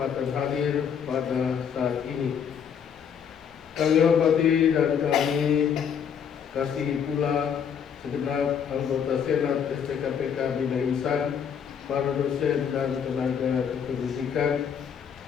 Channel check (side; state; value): right; quieter; 7.7 dB